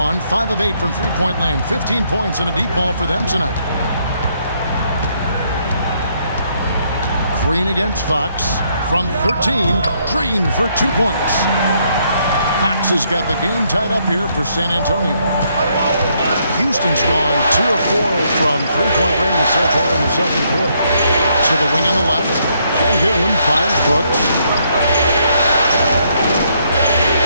5 of 8 from three-point land, 15 points and a deep ball for them tonight. Green against Fox from 13, Green for 2 points. Fox has got the game tied up here for San Antonio. Houston's gone 2 of 4 from three-point range so far in the second quarter. To the wing on the left, Sengun finds Brooks.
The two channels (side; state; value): both; inverted; correlation -0.72